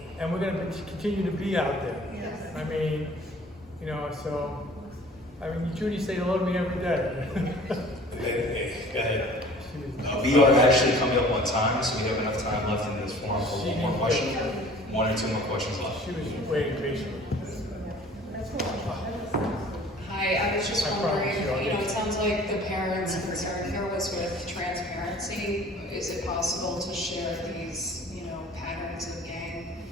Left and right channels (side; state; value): both; normal; correlation 0.48